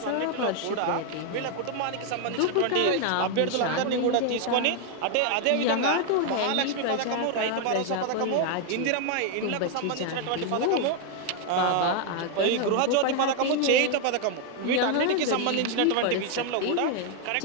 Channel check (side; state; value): both; different; correlation 0.00